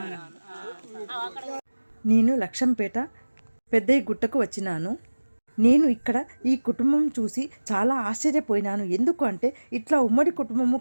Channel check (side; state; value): both; inverted; correlation -1.00